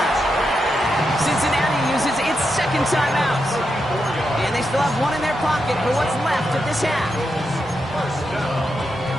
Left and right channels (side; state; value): both; normal; correlation 0.85